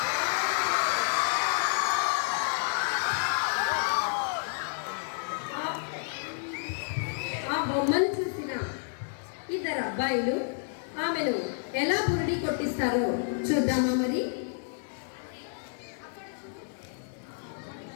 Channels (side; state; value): right; silent; 58 dB below the other